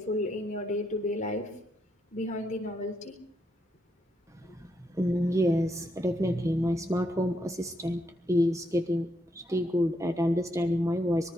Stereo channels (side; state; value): both; normal; correlation 0.79